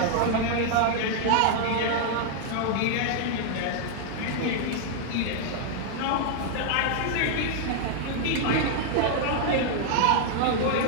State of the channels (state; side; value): different; both; correlation 0.00